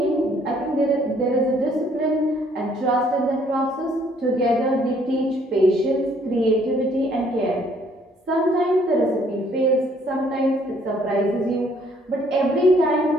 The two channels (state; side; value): normal; both; correlation 0.63